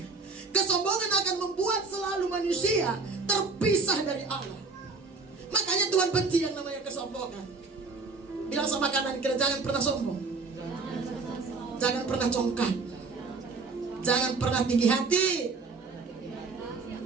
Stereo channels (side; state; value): left; quieter; 4.2 dB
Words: Kesombongan akan membuat selalu manusia terpisah dari Allah. Makanya Tuhan benci yang namanya kesombongan. Bilang sama kanan kiri, jangan pernah sombong. Jangan pernah congkak. Jangan pernah tinggi hati.